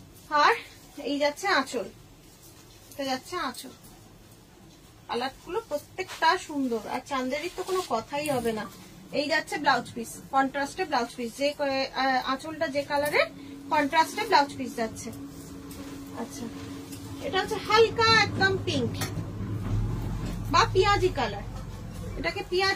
আর এই যাচ্ছে আঁচল, এটা যাচ্ছে আঁচল। কালার গুলো প্রত্যেকটা সুন্দর, আর চান্দেরির তো কোনো কথাই হবে না। এই যাচ্ছে ব্লাউজ পিস, কন্ট্রাস্টে ব্লাউজ পিস, যে আঁচলটা যে কালারের, কন্ট্রাস্টে ব্লাউজ পিস যাচ্ছে। আচ্ছা, এটা হচ্ছে হালকা একদম পিঙ্ক বা পিয়াজি কালার, এটাকে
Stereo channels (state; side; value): identical; both; correlation 1.00